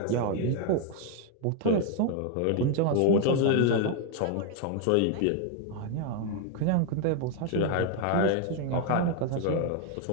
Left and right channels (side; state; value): both; different; correlation 0.01